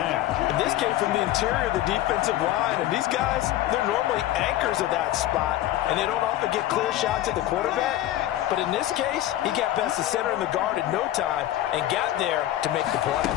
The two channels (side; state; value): right; quieter; 13.9 dB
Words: And this came from the interior of the defensive line. And these guys, they're normally anchors of that spot. And they don't often get clear shots at the quarterback. But in this case, he got past the center and the guard in no time and got there to make the play.